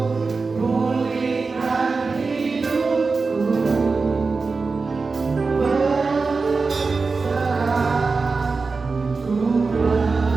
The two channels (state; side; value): quieter; left; 4.3 dB